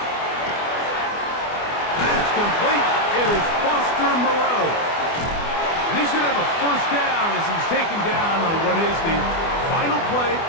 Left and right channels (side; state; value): right; late; 24 ms